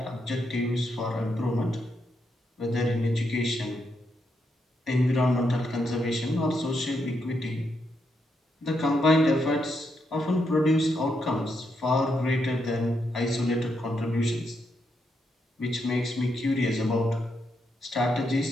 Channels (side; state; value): both; normal; correlation 0.80